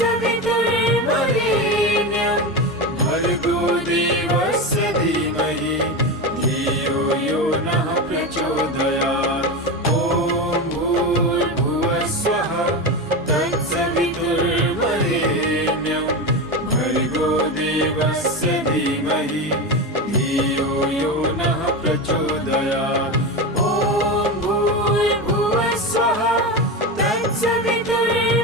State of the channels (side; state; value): both; normal; correlation 0.19